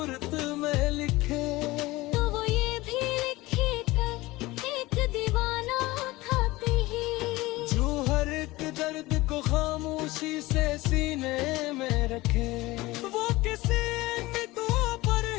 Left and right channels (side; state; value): right; quieter; 19.9 dB